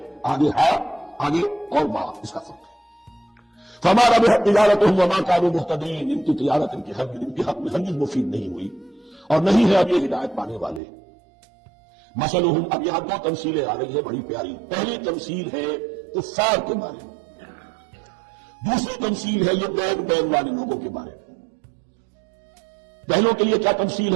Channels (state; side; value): drops out; left; at 10.8 s